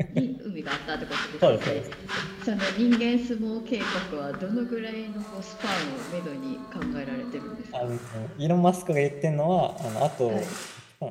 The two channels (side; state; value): both; identical; correlation 1.00